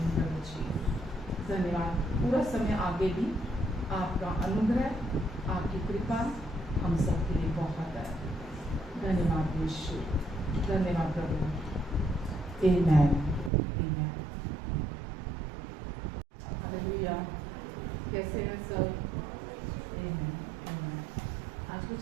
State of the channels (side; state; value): left; drops out; at 13.5 s